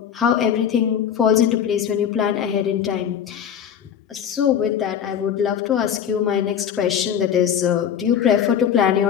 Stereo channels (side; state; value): right; quieter; 8.7 dB